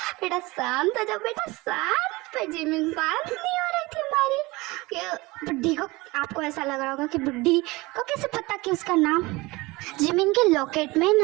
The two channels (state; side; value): quieter; left; 22.5 dB